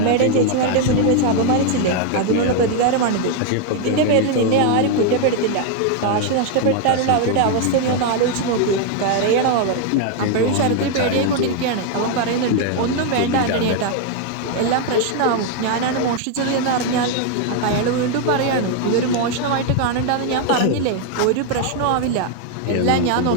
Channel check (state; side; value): different; both; correlation 0.00